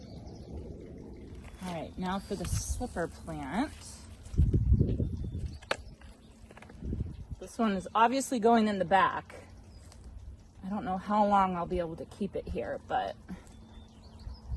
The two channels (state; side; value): identical; both; correlation 1.00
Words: All right, now for the slipper plant. This one is obviously going in the back. I don't know how long I'll be able to keep it here, but